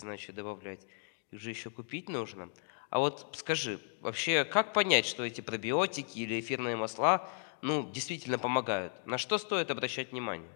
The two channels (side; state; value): right; silent; 55 dB below the other